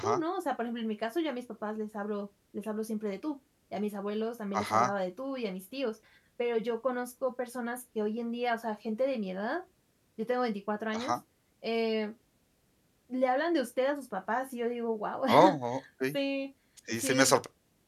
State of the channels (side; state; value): both; identical; correlation 1.00